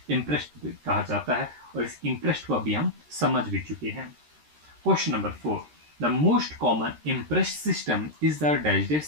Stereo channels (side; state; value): left; late; 13 ms